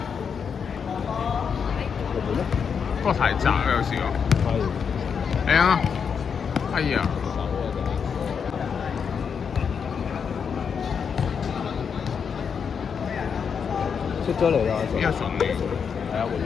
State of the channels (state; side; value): quieter; right; 6.6 dB